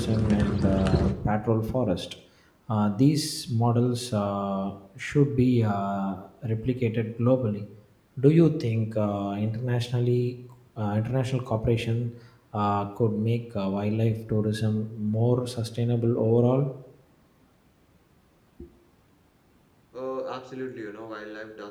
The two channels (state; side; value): identical; both; correlation 1.00